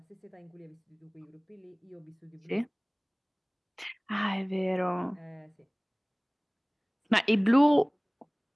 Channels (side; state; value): both; identical; correlation 1.00